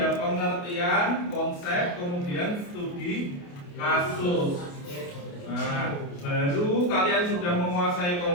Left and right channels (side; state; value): right; late; 28 ms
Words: pengertian konsep, kemudian studi kasus. Nah, baru kalian sudah menguasai